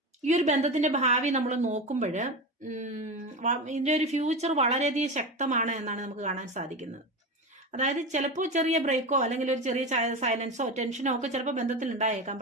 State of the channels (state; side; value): normal; both; correlation 0.22